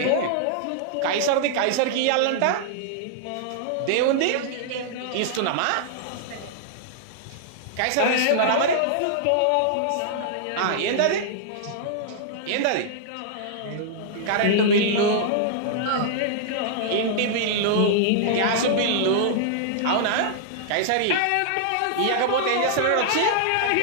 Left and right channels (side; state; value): both; different; correlation -0.01